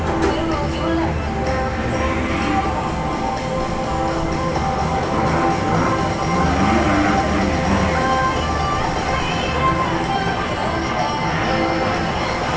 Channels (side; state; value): both; identical; correlation 1.00